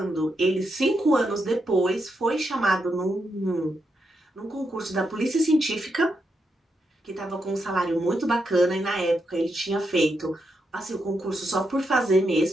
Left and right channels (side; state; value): both; normal; correlation 0.82